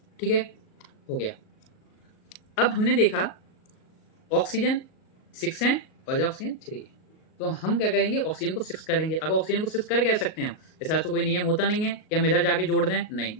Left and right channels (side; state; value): right; late; 38 ms